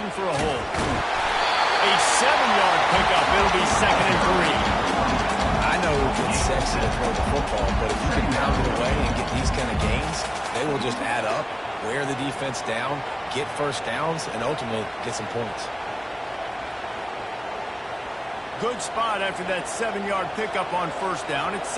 for a hole. A 7-yard pickup. It'll be 2nd and 3. I know it gets sexy to throw the football, but if you can pound it away and get these kind of gains, they will just add up, wear the defense down, get first downs, and ultimately get some points. Good spot after that 7-yard pickup on first down. It's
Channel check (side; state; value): both; identical; correlation 1.00